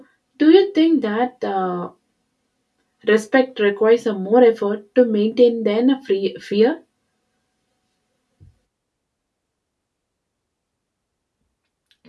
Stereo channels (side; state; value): both; identical; correlation 1.00